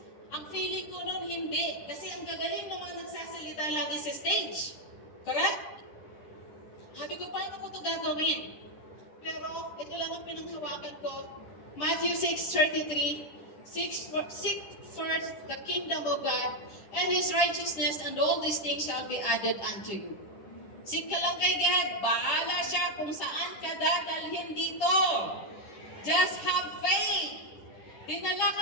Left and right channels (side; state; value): right; late; 10 ms